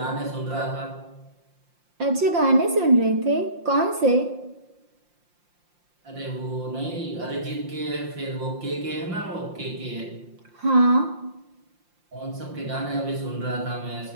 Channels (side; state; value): left; late; 5.7 ms